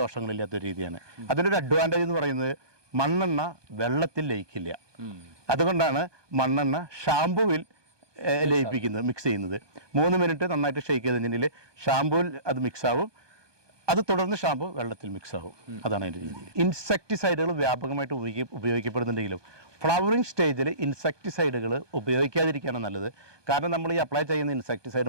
രീതിയാണ്. അതിലൊരു അഡ്വാൻറ്റേജ് എന്ന് പറയുന്നത് മണ്ണെണ്ണ വെള്ളത്തിൽ ലയിക്കില്ല. അതുകൊണ്ടാണ് മണ്ണെണ്ണ ഷാമ്പുവിൽ ലയിപ്പിക്കുന്നത്, മിക്സ് ചെയ്യുന്നത്. 3 മിനിറ്റ് നന്നായിട്ട് ഷെയ്ക്ക് ചെയ്ത് കഴിഞ്ഞാൽ ഷാമ്പുവിൽ അത് മിക്സ് ആവും. അത് തുടർന്ന് ഷാമ്പു വെള്ളത്തിൽ മിക്സ് ആവും. അതാണ് അതിൻ്റെ രീതി. ഇൻസെക്ടിസൈഡുകൾ വ്യാപകമായിട്ട് ഉപയോഗിക്കപ്പെടുന്നുണ്ടെങ്കിലും ഫ്ലവറിങ് സ്റ്റേജിൽ ഇൻസെക്ടിസൈഡുകൾ ഉപയോഗിക്കാതിരിക്കുകയാണ് നല്ലത്. കാരണം നമ്മൾ ഈ അപ്ലൈ ചെയ്യുന്ന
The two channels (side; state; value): left; late; 1.2 ms